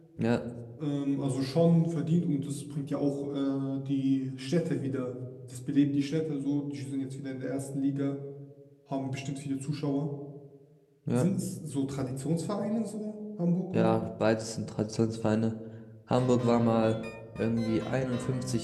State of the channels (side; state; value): both; identical; correlation 1.00